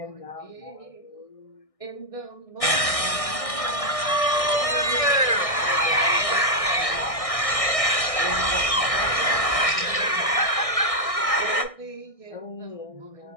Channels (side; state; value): right; late; 1.6 ms